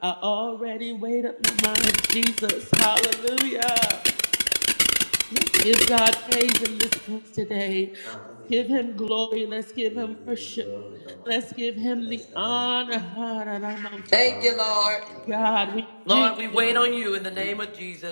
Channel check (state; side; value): inverted; both; correlation -1.00